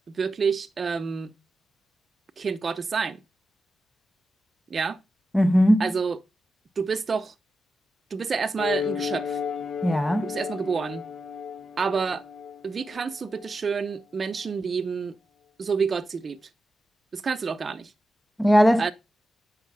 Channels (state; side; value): normal; both; correlation 0.91